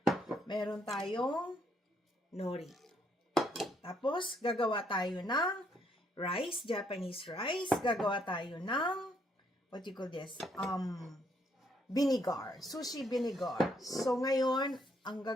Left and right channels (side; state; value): both; normal; correlation 0.71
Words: Meron tayong nori. Tapos gagawa tayo ng rice, Japanese rice. Gagawa tayo ng what you call this? Vinegar. Sushi vinegar. So, ngayon, ang